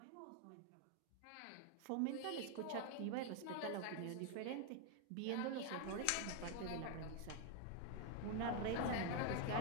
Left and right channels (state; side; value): different; both; correlation 0.01